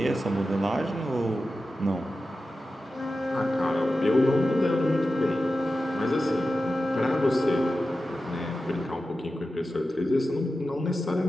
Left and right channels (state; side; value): normal; both; correlation 0.93